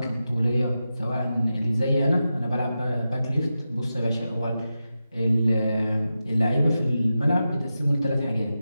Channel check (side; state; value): both; inverted; correlation -0.91